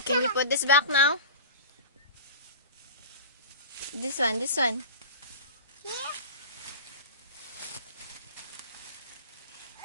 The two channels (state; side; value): inverted; both; correlation -0.33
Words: Can you put this back now? This one, this one. Yeah.